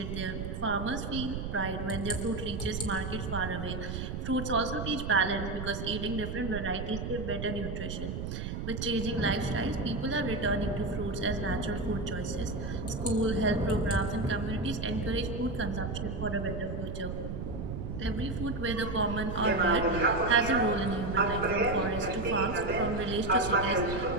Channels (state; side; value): noise; right; rumble, 5 dB below the sound